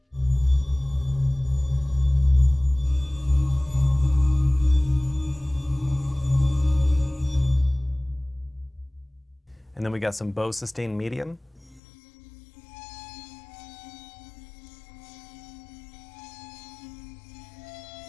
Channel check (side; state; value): right; drops out; at 11.8 s